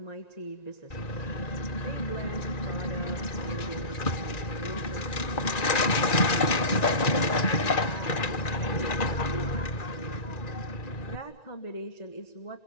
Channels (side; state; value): right; late; 1.9 ms